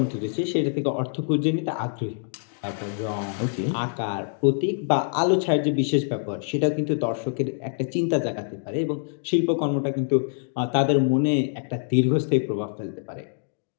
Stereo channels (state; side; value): silent; right; digital silence